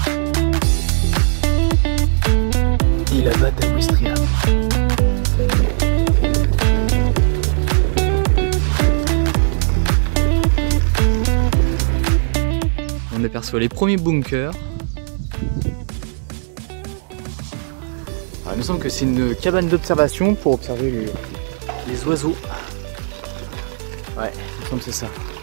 et la batte à Ouistreham. On aperçoit les premiers bunkers. Alors, il me semble que c'est une cabane d'observation pour observer les oiseaux. Ouais, il me semble que c'est ça.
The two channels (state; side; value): silent; left; digital silence